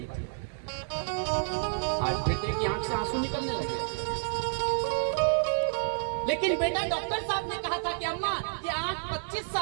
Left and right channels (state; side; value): silent; left; 58 dB below the other